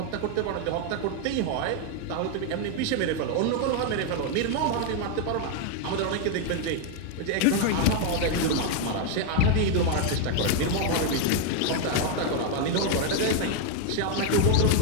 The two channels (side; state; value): both; different; correlation 0.01